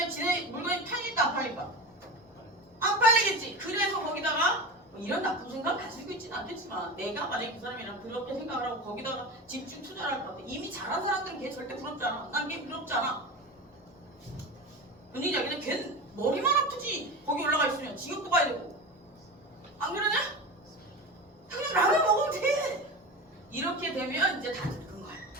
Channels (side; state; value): both; normal; correlation 0.27